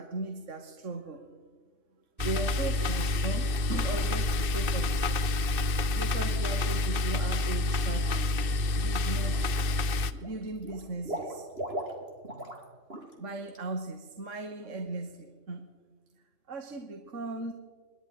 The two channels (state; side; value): late; left; 2.6 ms